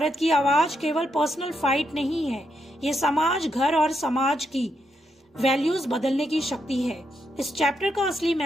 की आवाज केवल पर्सनल फाइट नहीं है, ये समाज, घर और समाज की वैल्यूज बदलने की शक्ति है। इस चैप्टर का असली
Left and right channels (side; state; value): both; normal; correlation 0.81